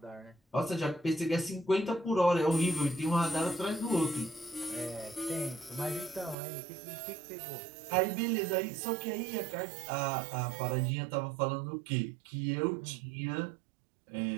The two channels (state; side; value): drops out; left; at 6.4 s